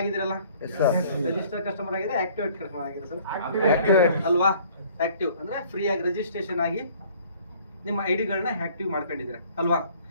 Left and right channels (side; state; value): both; inverted; correlation -0.55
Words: ರಿಜಿಸ್ಟರ್ ಕಸ್ಟಮರ್ ಆಗಿದೆ, ಆಕ್ಟಿವೇಟ್ ಕಸ್ಟಮರ್ ಆಗಿದೆ ಸರ್ ಅಲ್ವಾ? ಆಕ್ಟಿವ್ ಅಂದ್ರೆ ಫ್ರೀ ಆಗಿ ರಿಜಿಸ್ಟ್ರೇಷನ್ ಆಗಿ ನಿಮ್ಮ ಐಡಿಗಳನ್ನ ಆಕ್ಟಿವ್ ಮಾಡ್ಕೊಂಡಿದ್ದೀರಾ ಅಲ್ವಾ?